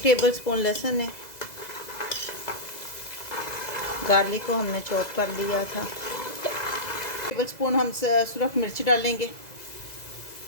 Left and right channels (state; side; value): late; right; 2.0 ms